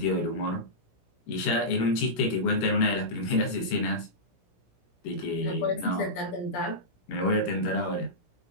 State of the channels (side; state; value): right; late; 17 ms